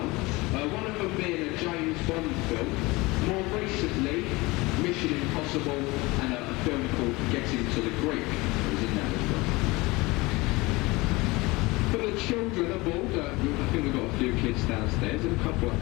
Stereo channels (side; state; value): right; quieter; 22.8 dB